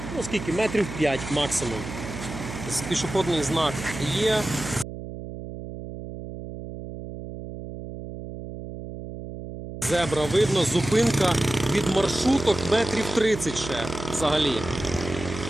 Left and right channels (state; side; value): noise; right; hum, 10 dB below the sound